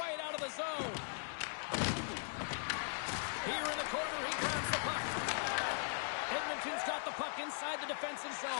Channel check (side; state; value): right; silent; digital silence